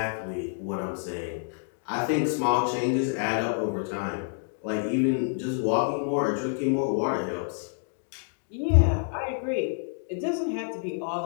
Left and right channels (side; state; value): right; silent; digital silence